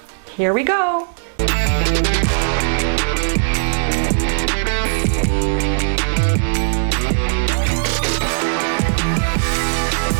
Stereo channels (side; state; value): left; silent; digital silence